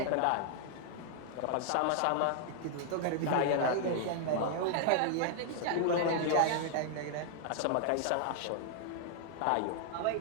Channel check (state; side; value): different; both; correlation 0.00